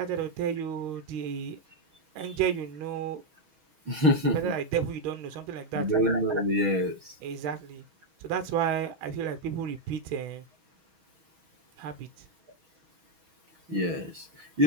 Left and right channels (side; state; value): left; late; 6.3 ms